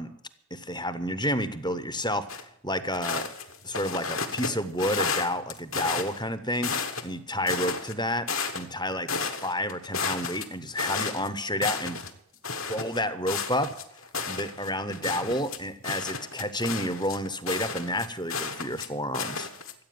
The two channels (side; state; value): both; normal; correlation 0.17